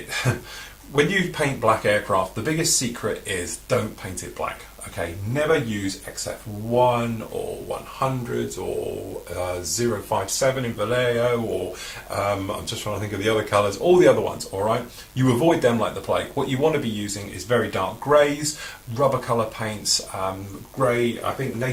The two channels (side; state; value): both; identical; correlation 1.00